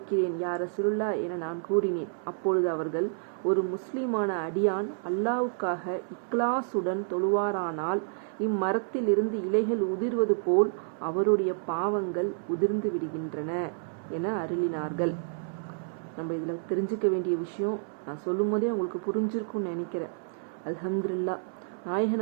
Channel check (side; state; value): left; silent; 58 dB below the other